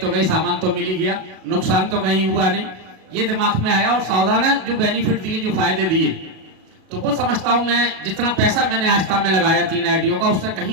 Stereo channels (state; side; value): late; left; 37 ms